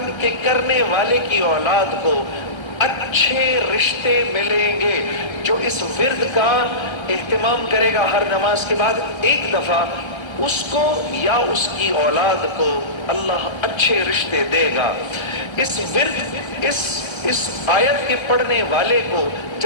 کرنے والے کی اولاد کو اچھے رشتے ملیں گے. جو اس ورد کا اہتمام کرے گا ہر نماز کے بعد ایک دفعہ، اس کو یا اس کی اولاد کو اللہ اچھے رشتے دے گا. اس ورد اس آیت کے پڑھنے والے کو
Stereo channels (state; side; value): late; right; 1.3 ms